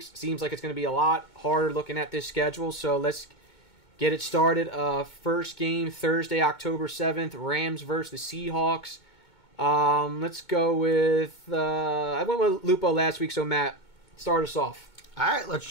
seems like it's going to be a lot harder looking at this schedule. So let's get it started. First game, Thursday, October 7th, Rams versus the Seahawks. Let's go with... I went with Lupo last week, so Matt, start us off. All right, let's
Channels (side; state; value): right; late; 2.2 ms